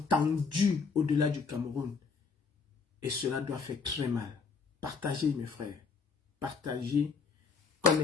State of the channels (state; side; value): quieter; right; 5.1 dB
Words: au-delà du Cameroun. Et cela doit faire très mal. Partagez mes frères. Partagez.